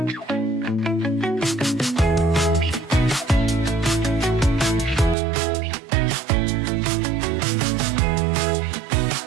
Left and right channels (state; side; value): drops out; left; at 5.2 s